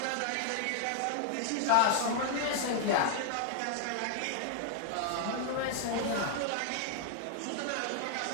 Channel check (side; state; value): both; different; correlation 0.00